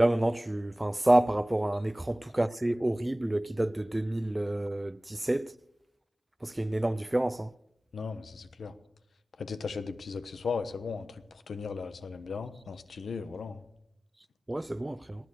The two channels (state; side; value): normal; both; correlation 0.98